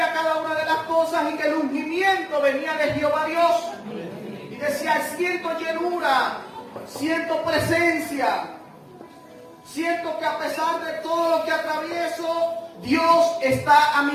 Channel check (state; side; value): identical; both; correlation 1.00